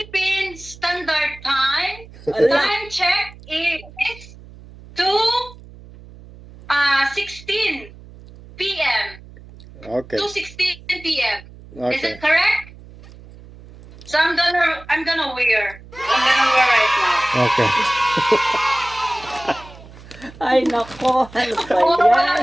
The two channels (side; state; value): right; noise; hum, 20 dB below the sound